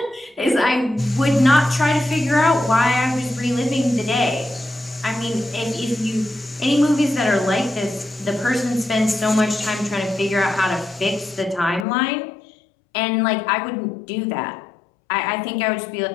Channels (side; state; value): right; drops out; at 11.9 s